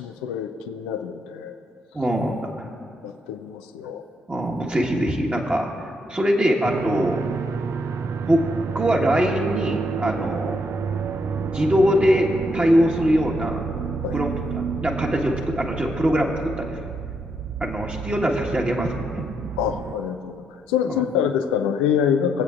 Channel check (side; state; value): both; normal; correlation 0.76